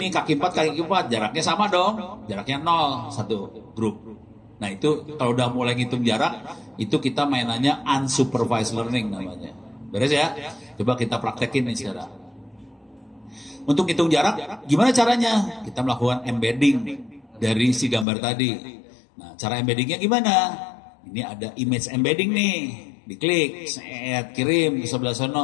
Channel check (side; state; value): right; drops out; at 18.1 s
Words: kaki 4, kaki 4, jaraknya sama dong. Jaraknya 0, satu grup. Nah itu kalau udah mulai ngitung jarak, itu kita mainannya unsupervised learning namanya. Beres ya? Coba kita praktekin nih sekarang. Untuk hitung jarak, gimana caranya? Kita melakukan embedding dari si gambar tadi. Nah cara embeddingnya gimana? Ini ada image embedding nih. Diklik, kirim ke sebelah